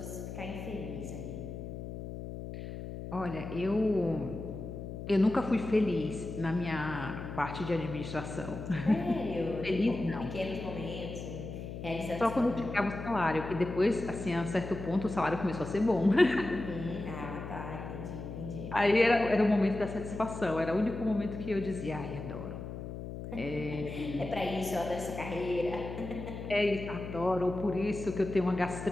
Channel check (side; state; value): left; noise; hum, 8 dB below the sound